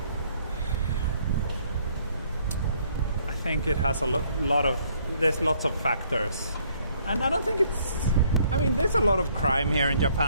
think it has there's lots of factors. And I don't think there's a lot of crime here in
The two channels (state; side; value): inverted; both; correlation -0.65